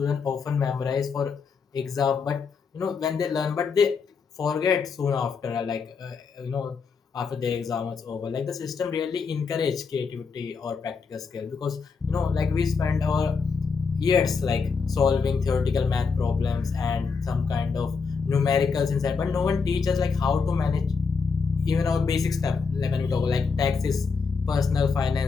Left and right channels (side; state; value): right; quieter; 5.2 dB